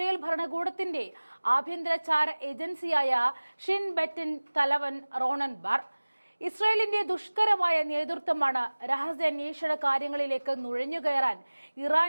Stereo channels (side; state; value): both; inverted; correlation -1.00